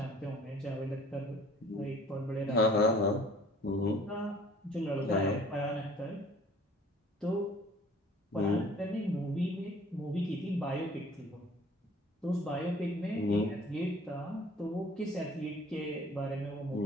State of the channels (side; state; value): both; normal; correlation 0.52